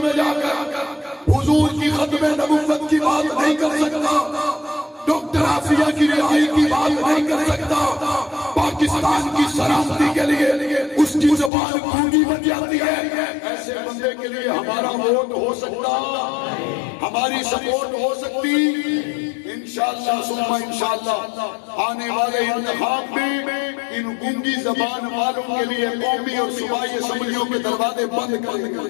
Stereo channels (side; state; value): right; drops out; at 11.5 s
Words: میں جا کر حضور کی ختم نبوت کی بات نہیں کر سکتا، ڈاکٹر عافیہ کی رہائی کی بات نہیں کر سکتا، پاکستان کی سلامتی کے لیے اس کی زبان گونگی بن جاتی ہے، ایسے بندے کے لیے ہمارا ووٹ ہو سکتا، ہماری سپورٹ ہو سکتی؟ انشاءاللہ ثم انشاءاللہ آنے والے انتخاب میں ان گونگی زبان والوں کے لیے قومی اور صوبائی اسمبلیوں کے دروازے بند کر دیں